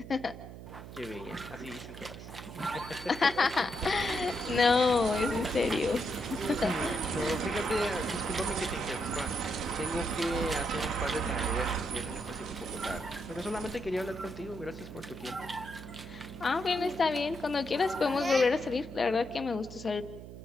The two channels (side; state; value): right; noise; hum, 13 dB below the sound